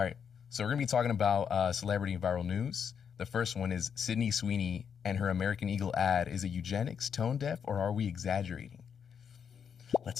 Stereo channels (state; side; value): quieter; right; 7.3 dB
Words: right, so we're gonna be talking about celebrity and viral news. The first one is Sydney Sweeney and her American Eagle ad. Is it eugenics, tone deaf, or are we exaggerating?